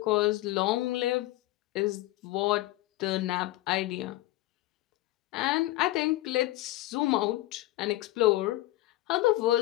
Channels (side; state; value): right; quieter; 17.3 dB